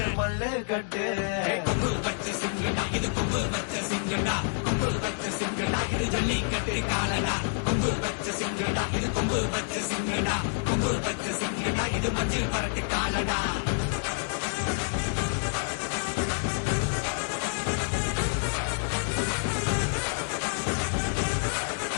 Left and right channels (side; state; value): right; silent; digital silence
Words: மல்லுக்கட்டு கொம்பு வச்ச சிங்கடா இது கொம்பு வச்ச சிங்கடா கொம்பு வச்ச சிங்கடா இது ஜல்லிக்கட்டு காலடா கொம்பு வச்ச சிங்கடா இது கொம்பு வச்ச சிங்கடா கொம்பு வச்ச சிங்கடா இது மஞ்சள் பரட்டு